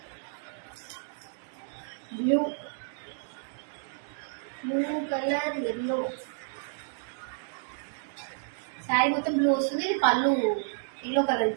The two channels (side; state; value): left; silent; digital silence